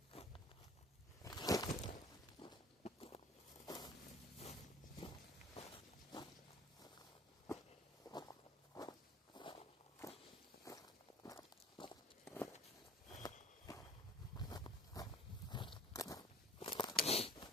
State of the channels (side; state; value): both; normal; correlation 0.48